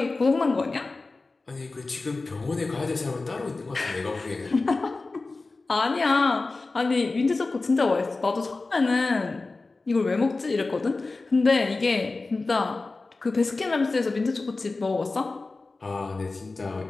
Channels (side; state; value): right; quieter; 3.6 dB